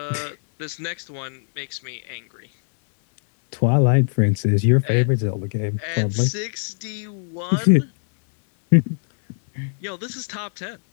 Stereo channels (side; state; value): right; silent; 64 dB below the other